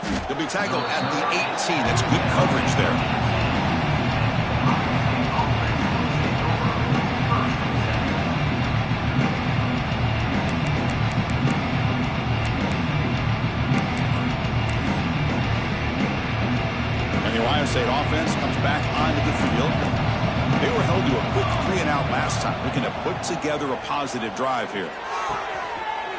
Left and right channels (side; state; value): both; identical; correlation 1.00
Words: He'll be tackled at the 18. That's good coverage there. And the Ohio State offense comes back onto the field. They were held to a quick 3-and-out last time. Looking to put together a positive drive here.